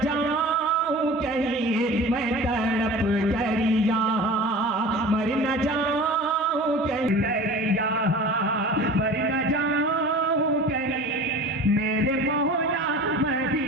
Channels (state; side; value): normal; both; correlation 0.38